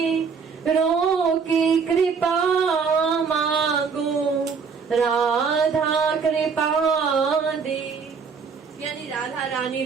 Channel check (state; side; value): quieter; left; 5.7 dB